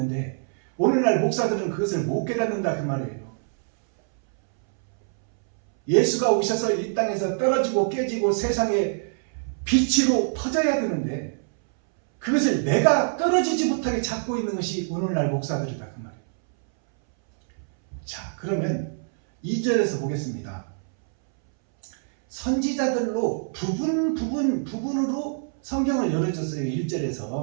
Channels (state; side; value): silent; left; 62 dB below the other